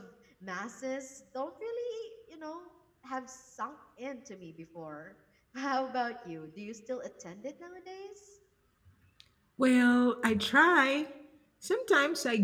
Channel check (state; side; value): identical; both; correlation 1.00